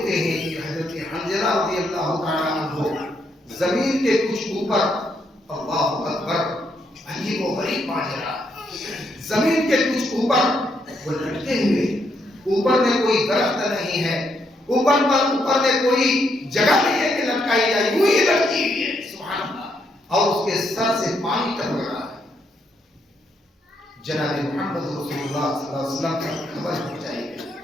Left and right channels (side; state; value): both; normal; correlation 0.76